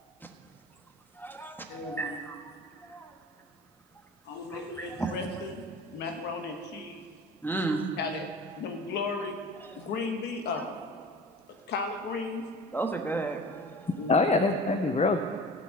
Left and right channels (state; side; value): normal; both; correlation 0.39